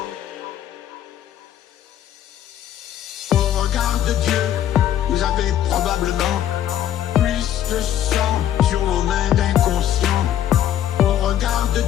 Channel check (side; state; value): right; quieter; 11.0 dB